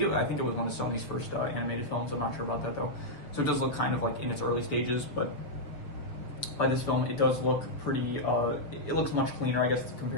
was one of Sony's first animated films. I'm not sure about that though. So it does look kind of like in its early stages, but by this film, it does look pretty, it looks much cleaner, I guess,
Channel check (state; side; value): late; right; 6.7 ms